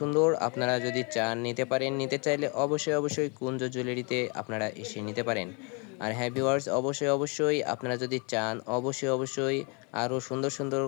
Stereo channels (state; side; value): quieter; right; 34.0 dB